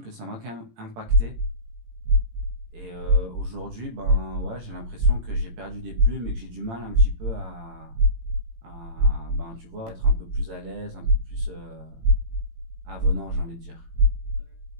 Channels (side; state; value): left; late; 18 ms